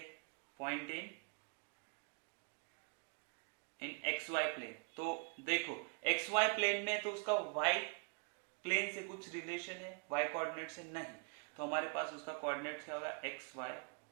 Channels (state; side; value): quieter; left; 35.3 dB